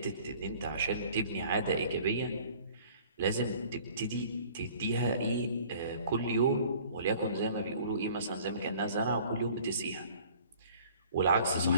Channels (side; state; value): both; inverted; correlation -0.51